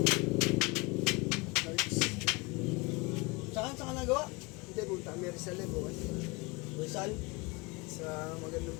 Saan ka nagawa? Hindi, punta kami Rizal eh, bukas. Rizal? Sa magandang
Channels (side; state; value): right; quieter; 25.8 dB